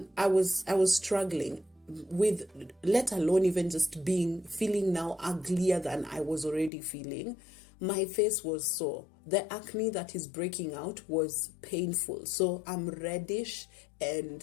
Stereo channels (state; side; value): drops out; right; at 6.7 s